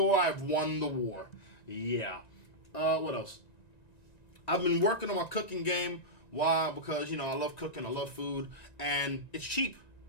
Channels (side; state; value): right; late; 1.9 ms